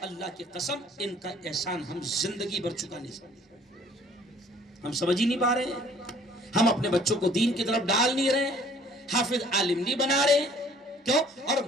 اللہ کی قسم ان کا احسان ہم زندگی بھر چکا نہیں سکتے۔ ہم سمجھ ہی نہیں پا رہے ہیں، ہم اپنے بچوں کو دین کی طرف ڈال نہیں رہے، حافظ عالم نہیں بنا رہے، کیوں؟ اور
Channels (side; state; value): both; normal; correlation 0.55